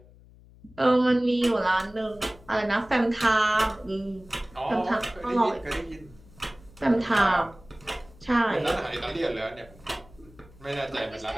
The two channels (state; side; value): noise; left; hum, 24 dB below the sound